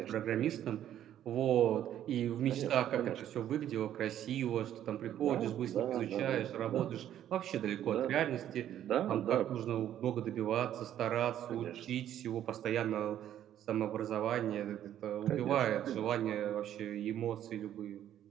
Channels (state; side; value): quieter; left; 11.2 dB